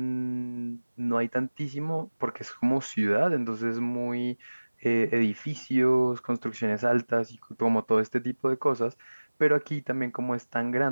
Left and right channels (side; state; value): both; inverted; correlation -1.00